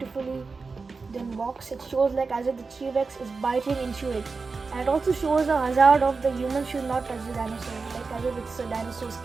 done box. It shows like as if the T-Rex is biting into it. And it also shows the hazard of the human should not touch the dinosaur, like as if it's a dinosaur's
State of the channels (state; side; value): quieter; left; 4.4 dB